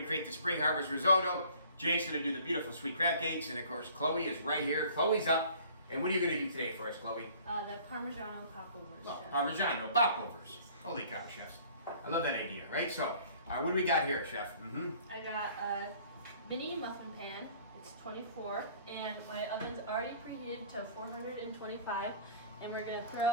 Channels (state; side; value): inverted; both; correlation -0.52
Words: create the spring harvest risotto. Jake's going to do the beautiful sweet crab cakes. And, of course, Chloe is right here. Chloe's up. And what are you going to do today for us, Chloe? The Parmesan Popovers. Oh, Parmesan, Popovers. Holy cow, chefs. I love that idea, right? So, what do we got here, Chef? I got a mini muffin pan. It's 24, and my oven's already preheated to 425. And we're going to